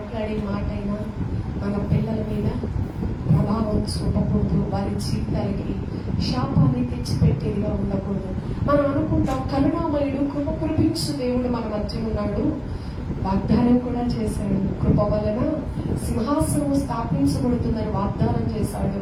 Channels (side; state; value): both; identical; correlation 1.00